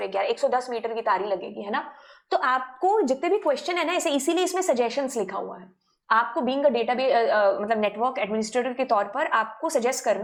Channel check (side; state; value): both; identical; correlation 1.00